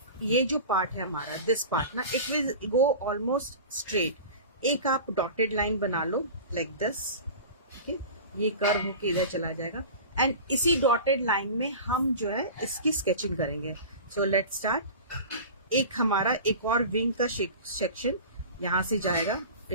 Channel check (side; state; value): both; inverted; correlation -0.34